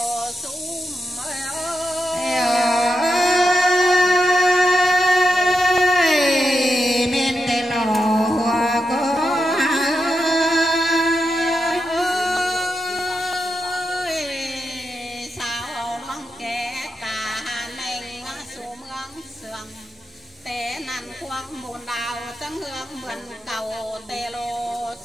xuống té năn khoang buồn đào trắng hương mượn cầu tê lô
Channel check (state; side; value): normal; both; correlation 0.87